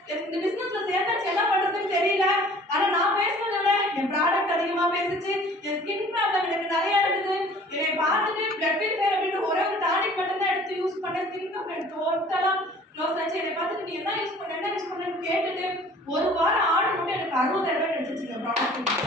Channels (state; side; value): normal; both; correlation 0.50